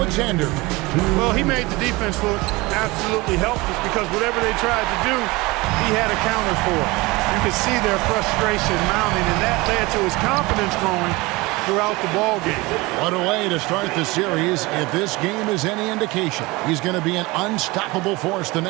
Well, he made the defense look absolutely helpless because whatever they tried to do, he had a counter for it. You could see their frustration mounting, and that led to his confidence growing throughout the ball game. What a way to start the series. If this game is any indication, he's going to be an unstoppable force the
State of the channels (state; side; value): quieter; left; 22.8 dB